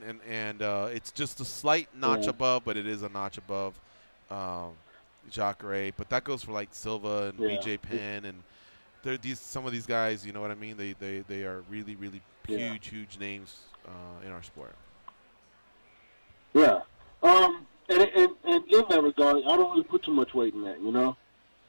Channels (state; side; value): inverted; both; correlation -1.00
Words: And it's just a slight notch above, but it is a notch above. Jacare, but that goes for like Silva and BJ Penn, and some of these guys, you know what I mean? They are really huge names in our sport. Yeah, and in that regard, I don't really put too much weight in that.